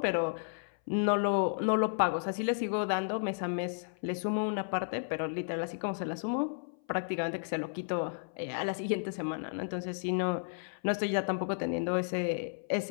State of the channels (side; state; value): right; silent; 56 dB below the other